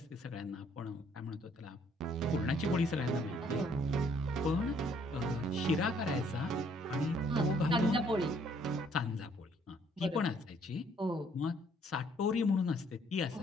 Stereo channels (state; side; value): normal; both; correlation 0.64